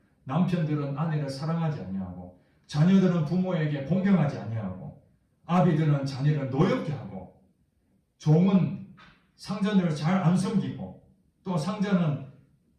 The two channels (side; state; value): both; identical; correlation 1.00